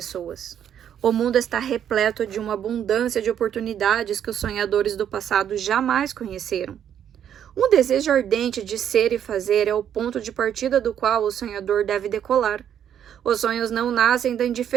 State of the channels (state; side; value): quieter; left; 9.4 dB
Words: O mundo está repleto de uma abundância de oportunidades que os sonhadores do passado jamais conheceram. Um desejo ardente de ser e fazer é o ponto de partida do qual o sonhador deve decolar. Os sonhos não nascem da